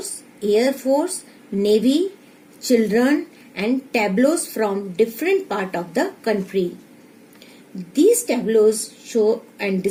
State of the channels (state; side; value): identical; both; correlation 1.00